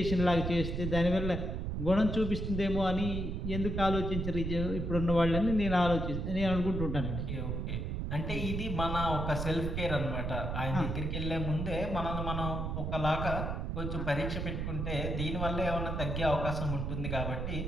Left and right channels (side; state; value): right; noise; rumble, 2 dB below the sound